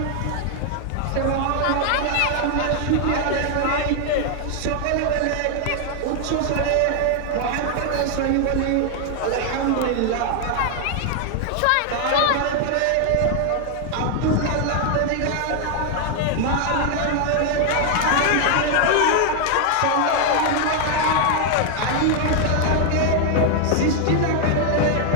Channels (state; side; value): different; both; correlation 0.00